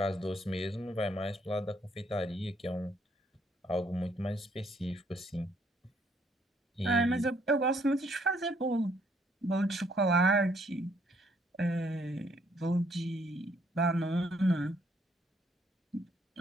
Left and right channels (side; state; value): both; normal; correlation 0.68